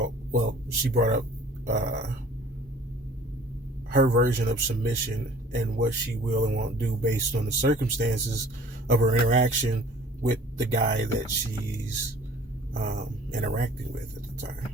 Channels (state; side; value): normal; both; correlation 0.50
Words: she brought up her version of submission and what she will and won't do based on the circumstances of her interaction with the guy that she's interacting with at the time.